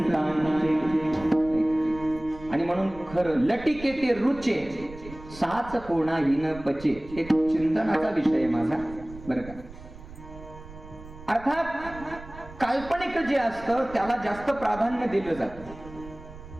आणि म्हणून खरं लटिके ते रुचे, साच कोणाही न पचे. एक चिंतनाचा विषय आहे माझा बरं का. अर्थात काल्पनिक जे असतं त्याला जास्त प्राधान्य दिलं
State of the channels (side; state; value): right; noise; rumble, 16 dB below the sound